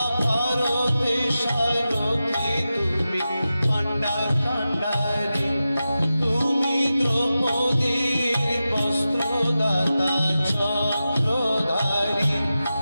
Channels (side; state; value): both; inverted; correlation -0.93